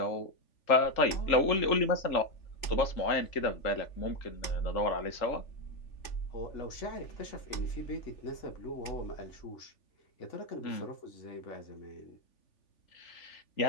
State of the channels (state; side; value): late; right; 3.5 ms